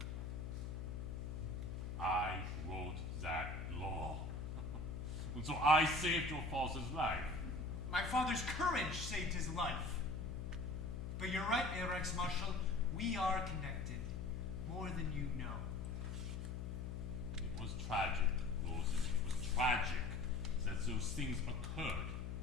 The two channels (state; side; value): noise; left; hum, 4 dB below the sound